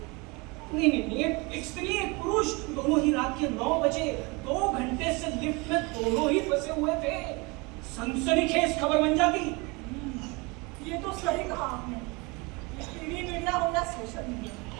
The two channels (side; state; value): left; quieter; 27.1 dB